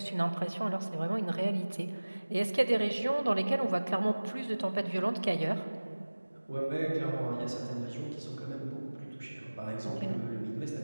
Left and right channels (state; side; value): inverted; both; correlation -1.00